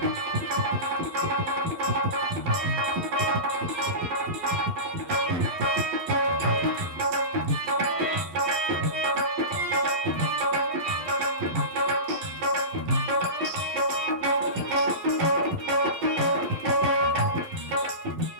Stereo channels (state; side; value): late; left; 12 ms